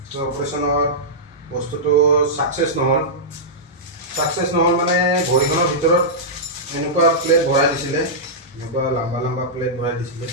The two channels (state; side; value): normal; both; correlation -0.12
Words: চ' অপাৰেশ্যনত বস্তুটো ছাকচেছ নহ'ল মানে ভৰিখনৰ ভিতৰত এনেকুৱা প্লেট ভৰাই দিছিলে এনেকুৱা লম্বা প্লেট ভৰাই দিছিলে